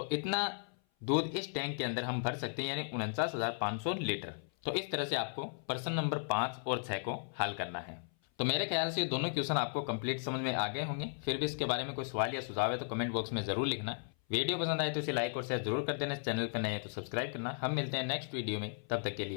इतना दूध इस टैंक के अंदर हम भर सकते हैं, यानी 49,500 लीटर। तो इस तरह से आपको प्रश्न नंबर 5 और 6 को हल करना है। तो मेरे ख्याल से ये दोनों क्वेश्चन आपको कंप्लीट समझ में आ गए होंगे। फिर भी इसके बारे में कोई सवाल या सुझाव है तो कमेंट बॉक्स में जरूर लिखना। वीडियो पसंद आए तो इसे लाइक और शेयर जरूर कर देना। चैनल पर नए हैं तो सब्सक्राइब करना। हम मिलते हैं नेक्स्ट वीडियो में, तब तक के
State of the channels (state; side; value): silent; right; 54 dB below the other